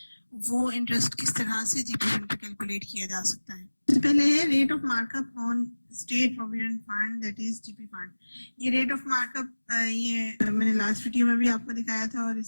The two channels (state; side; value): inverted; both; correlation -1.00